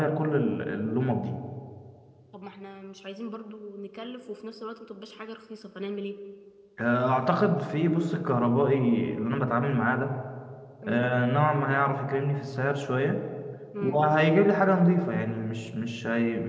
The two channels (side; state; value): both; identical; correlation 1.00